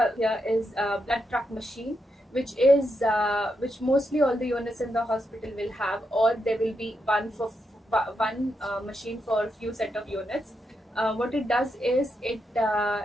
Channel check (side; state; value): both; normal; correlation 0.83